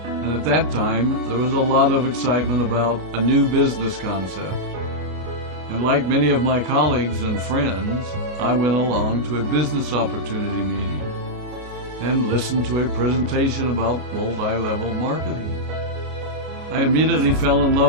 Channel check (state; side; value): late; left; 33 ms